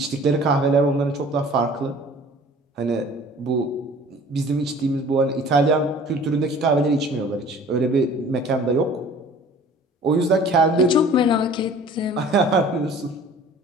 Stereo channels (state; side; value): normal; both; correlation 0.48